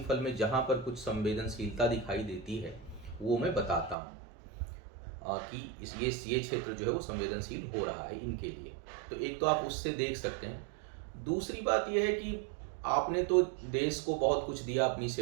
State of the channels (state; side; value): drops out; left; at 4.0 s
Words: में जहाँ पर कुछ संवेदनशीलता दिखाई देती है वो मैं बताता हूँ कि ये क्षेत्र जो है वो संवेदनशील हो रहा है इनके लिए। तो एक तो आप उससे देख सकते हैं। दूसरी बात यह है कि आपने तो देश को बहुत कुछ दिया, अपनी